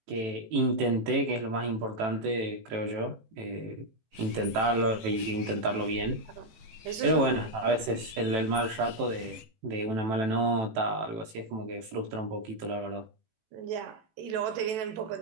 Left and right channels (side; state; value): left; late; 18 ms